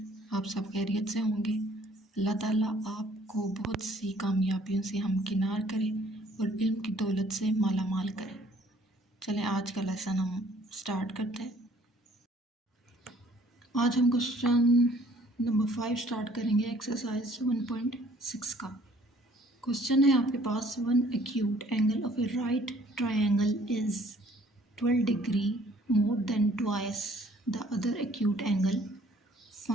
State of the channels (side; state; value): both; normal; correlation 0.58